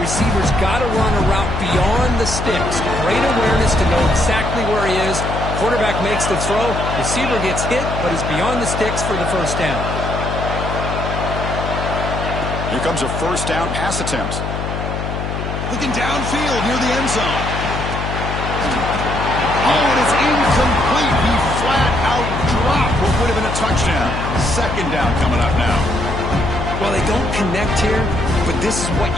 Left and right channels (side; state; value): left; noise; hum, 4 dB below the sound